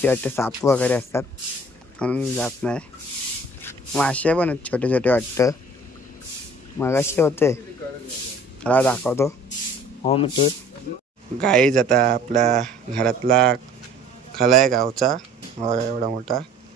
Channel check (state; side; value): normal; both; correlation 0.50